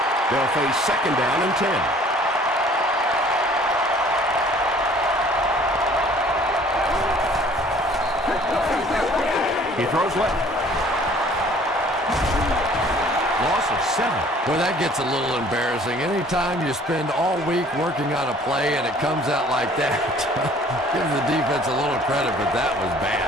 They'll face second down and 10. He throws left. Loss of 7. Boy, that gets a little embarrassing. Anytime you spend all week working on a play and it comes out like that, give the defense a little credit, but that was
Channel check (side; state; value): both; normal; correlation 0.54